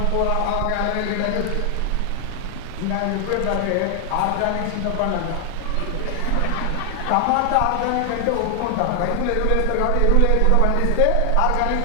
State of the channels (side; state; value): both; different; correlation 0.00